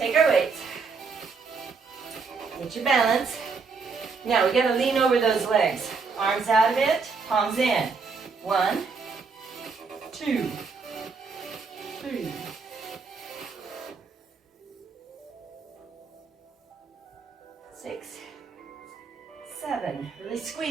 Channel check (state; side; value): quieter; left; 4.9 dB